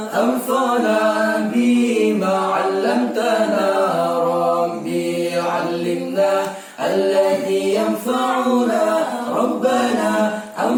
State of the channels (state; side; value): identical; both; correlation 1.00